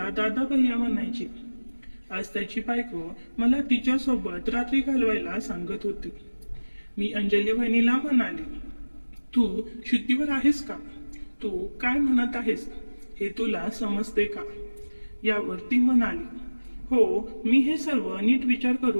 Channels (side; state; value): both; inverted; correlation -1.00